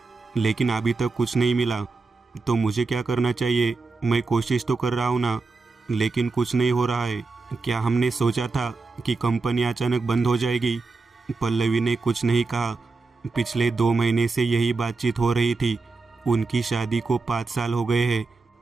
लेकिन अभी तक कुछ नहीं मिला, तो मुझे क्या करना चाहिए? मैं कोशिश तो कर रहा हूँ ना, लेकिन कुछ नहीं हो रहा है। क्या हमने सोचा था कि कंपनी अचानक बंद हो जाएगी? पल्लवी ने कुछ नहीं कहा। पिछले 2 महीने से यही बातचीत हो रही थी। उनकी शादी को 5 साल हो गए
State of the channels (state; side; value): quieter; left; 4.0 dB